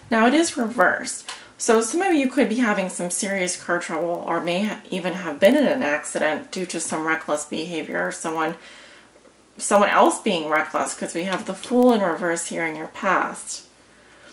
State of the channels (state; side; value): identical; both; correlation 1.00